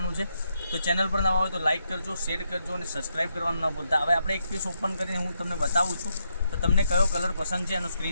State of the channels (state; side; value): inverted; both; correlation -0.80